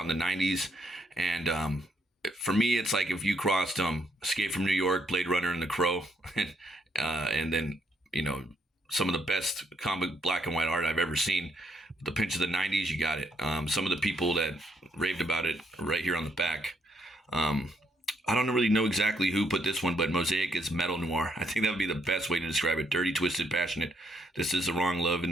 in the 90s, and for me, it's like if you crossed Escape from New York, Blade Runner, and The Crow, and then, you know, some of the best comic black and white art I've ever seen. With the pinch of the 90s, you got it. Some of the people that raved about it right here on the back. I don't really know exactly who put this one, but Mosaic is metal noir. I think that would be the best way to describe it. Dirty, twisted, passionate. This is the wrong love in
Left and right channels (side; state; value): both; normal; correlation 0.74